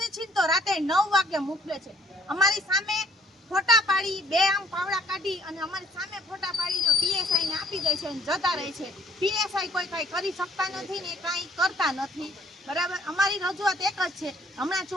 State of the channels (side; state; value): both; normal; correlation 0.60